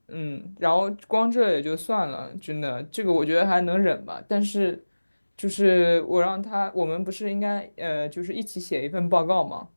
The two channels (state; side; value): inverted; both; correlation -1.00